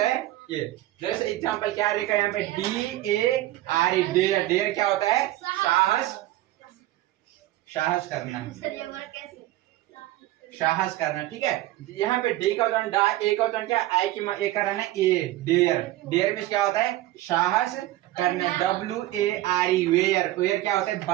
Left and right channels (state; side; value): quieter; left; 15.9 dB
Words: है ये, जैसे एग्जांपल क्या लिखा है यहाँ पे DARE, डेयर, डेयर क्या होता है, साहस, साहस करना, साहस करना, ठीक है। यहाँ पे डी का उच्चारण डा, ए का उच्चारण क्या, आई की ए का रहना ए, डेयर, डेयर में क्या होता है, साहस करना, WARE, वेयर, वेयर क्या होता है,